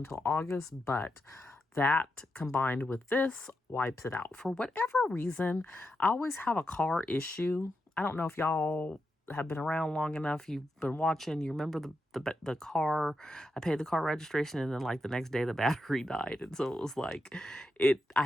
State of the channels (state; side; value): normal; both; correlation 0.86